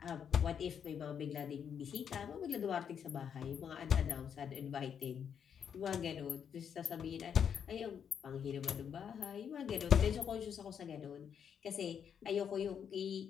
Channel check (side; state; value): right; quieter; 7.8 dB